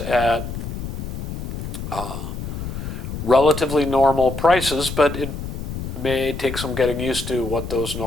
relatively normal prices, but it may take some getting used to what those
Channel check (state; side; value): noise; left; rumble, 6 dB below the sound